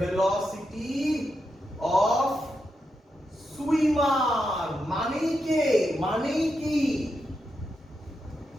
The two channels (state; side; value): normal; both; correlation 0.85